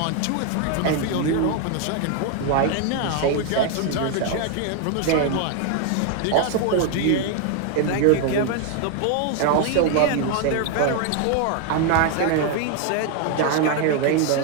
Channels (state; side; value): different; both; correlation 0.00